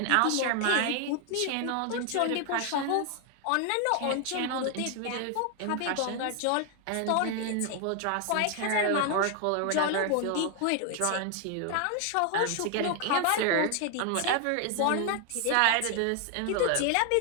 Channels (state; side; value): different; both; correlation 0.00